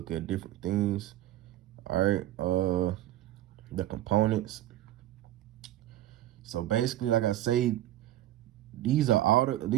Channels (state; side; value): quieter; left; 14.1 dB